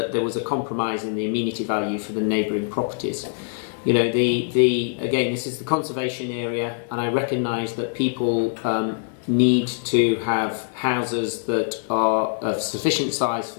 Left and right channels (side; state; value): right; silent; digital silence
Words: there was a compromise in the amenity value for the neighbouring properties. You know, again, this is the conservation area, and I recognise that people need to have houses that are of sufficient size for